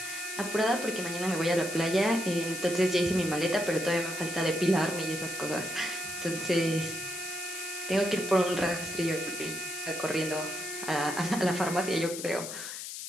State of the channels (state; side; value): noise; left; hiss, 8 dB below the sound